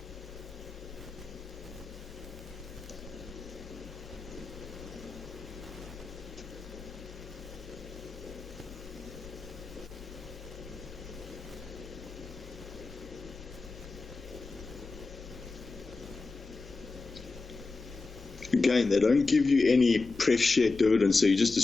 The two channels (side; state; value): right; quieter; 3.8 dB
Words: Again, they don't give you any pref share dividend, so you just